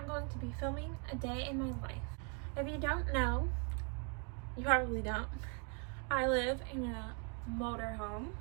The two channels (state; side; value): quieter; left; 38.1 dB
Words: going to be filming a day in my life. If you don't know, you probably don't, I live in a motorhome,